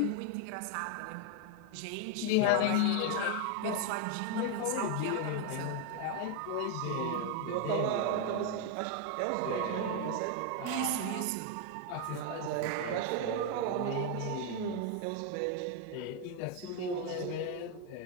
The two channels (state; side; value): different; both; correlation 0.01